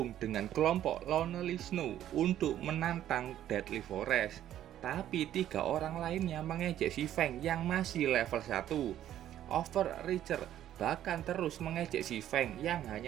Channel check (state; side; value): quieter; left; 11.8 dB